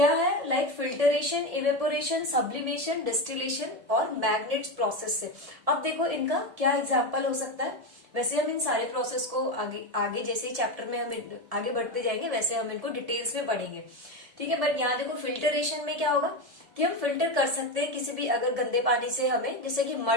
है, like filtration, evaporation, sublimation, distillation और मैग्नेट्स प्रोसेस से। अब देखो इनका क्या एग्जाम्पल हो सकता है। वैसे हम इन सारे प्रोसेस को आगे आगे जैसे ही चैप्टर में हम आगे बढ़ते जाएंगे, वैसे हम इनको डिटेल्स में पढ़ेंगे। ठीक है, बट यहाँ देखो फिल्टरेशन में क्या होगा कि हम फिल्टर कर सकते हैं किसी भी अगर गंदे पानी से हमें, जैसे कि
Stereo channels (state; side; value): late; left; 1.7 ms